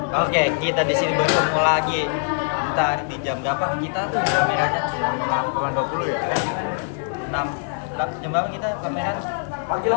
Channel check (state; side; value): silent; right; 64 dB below the other